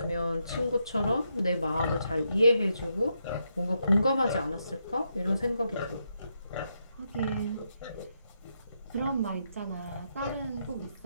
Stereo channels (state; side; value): inverted; both; correlation -0.81